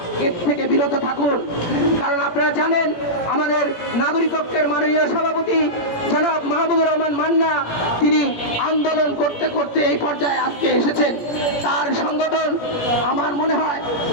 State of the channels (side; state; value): right; late; 17 ms